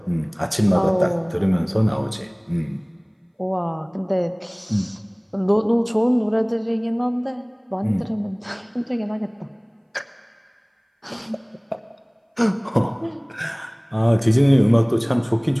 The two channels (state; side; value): identical; both; correlation 1.00